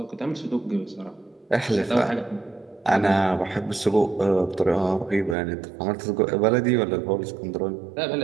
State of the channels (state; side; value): drops out; left; at 5.4 s